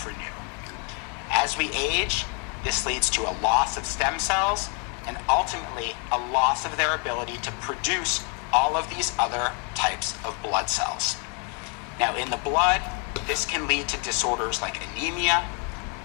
As we age, this leads to a loss of stem cells and ultimately a loss of their ability to produce all of these other types of blood cells. Now, in the blood, this can lead to disorders like anemia,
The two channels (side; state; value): right; quieter; 36.6 dB